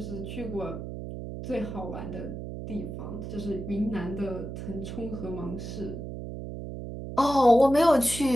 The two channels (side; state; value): right; noise; hum, 8 dB below the sound